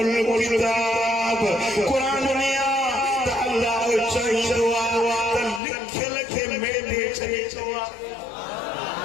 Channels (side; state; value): right; drops out; at 5.6 s